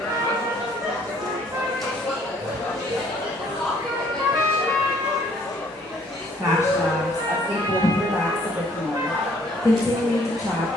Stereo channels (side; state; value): both; normal; correlation 0.61